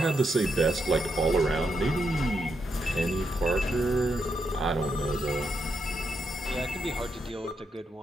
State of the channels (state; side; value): normal; both; correlation 0.81